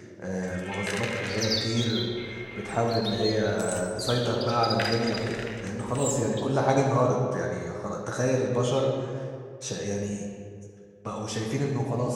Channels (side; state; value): both; identical; correlation 1.00